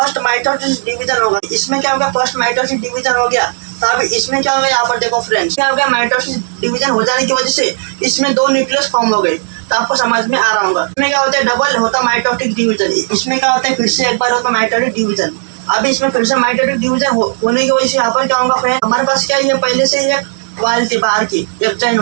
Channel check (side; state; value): left; silent; digital silence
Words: माइटोसिस डिवीजन होगा। इसमें क्या होगा, फर्स्ट माइटोसिस डिवीजन हो गया। तो अभी इसमें क्या होगा, यहाँ पर देखो फ्रेंड्स, क्या हो गया, माइटोसिस डिवीजन हो जाने की वजह से इसमें 2 न्यूक्लियस फॉर्म हो गए। तो आपको समझ में आ रहा होगा। इसमें क्या होता है, डबल होता माइटोटिक डिवीजन। इसमें क्या होता है, फिर से एक बार होता माइटोटिक डिवीजन। अभी इसमें फिर से माइटोटिक डिवीजन होने की वजह से यहाँ पर क्या होगा फ्रेंड, हमारे पास क्या है, पहले से ये वाल थी बाहर की, एक्जाइन